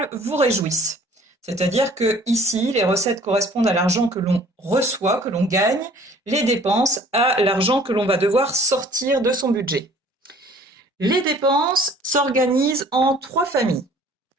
vous réjouissent. C'est-à-dire que ici, les recettes correspondent à l'argent que l'on reçoit, que l'on gagne, les dépenses à l'argent que l'on va devoir sortir de son budget. Les dépenses s'organisent en trois familles.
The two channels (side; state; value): both; normal; correlation 0.53